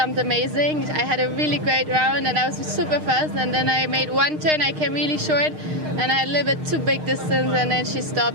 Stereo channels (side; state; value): left; late; 6.5 ms